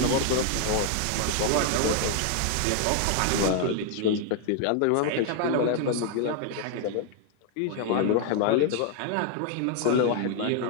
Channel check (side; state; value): both; different; correlation 0.00